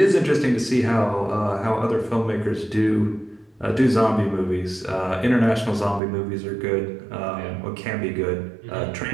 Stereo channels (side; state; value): left; drops out; at 6.0 s